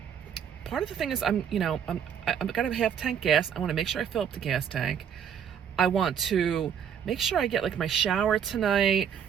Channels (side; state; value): left; quieter; 8.2 dB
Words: of the thing is I'm got a half-tank gas. I want to make sure I fill up the gas tank. I want to make sure I get like my shower tonight,